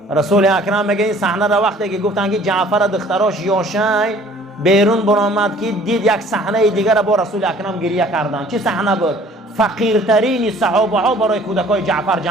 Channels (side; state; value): both; normal; correlation 0.53